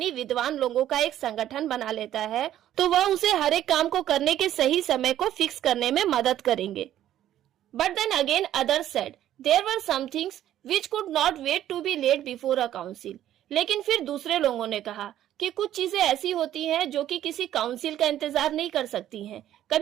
विद्वान लोगों का एक संगठन बना लेता है, तो वह उसे हर एक काम को करने के सही समय को फिक्स करने में मदद करेंगे। But then again others said there were some things which could not wait to be laid before a council. लेकिन फिर दूसरे लोगों ने कहा कि कुछ चीजें ऐसी होती हैं जो कि किसी काउंसिल का इंतजार नहीं कर सकती हैं।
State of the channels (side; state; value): left; quieter; 12.0 dB